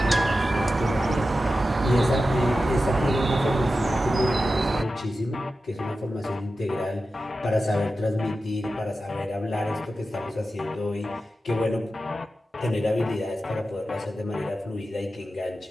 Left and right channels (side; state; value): both; normal; correlation 0.92